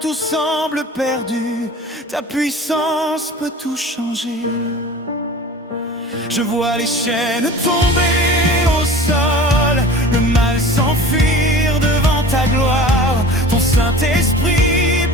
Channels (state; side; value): normal; both; correlation 0.40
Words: semble perdu, ta puissance peut tout changer. Je vois les chaînes tomber au sol, le mal s'enfuir devant ta gloire. Ton Saint-Esprit